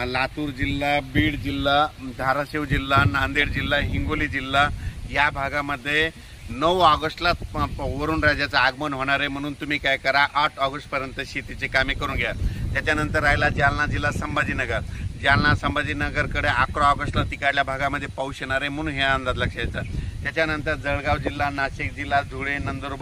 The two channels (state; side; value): identical; both; correlation 1.00